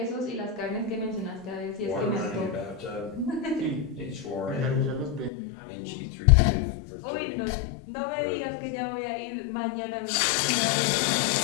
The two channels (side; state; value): right; drops out; at 5.3 s